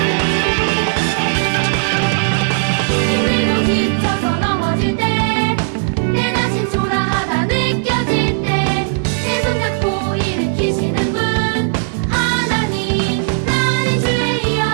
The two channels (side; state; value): left; silent; digital silence